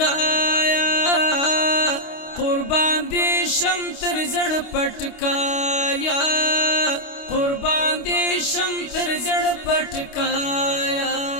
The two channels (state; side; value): late; right; 29 ms